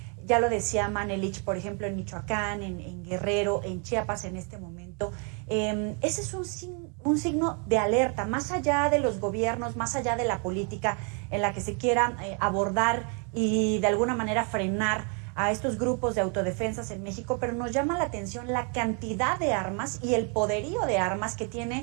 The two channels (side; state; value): left; quieter; 37.4 dB